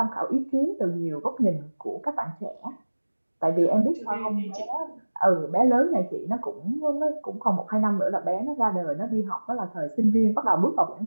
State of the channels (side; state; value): both; inverted; correlation -1.00